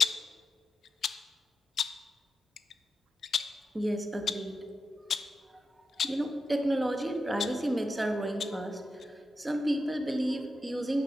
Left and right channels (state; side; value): normal; both; correlation 0.88